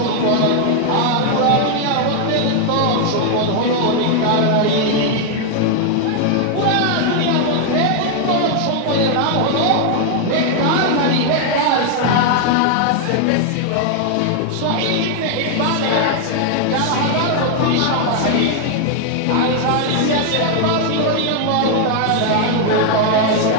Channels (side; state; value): both; different; correlation 0.00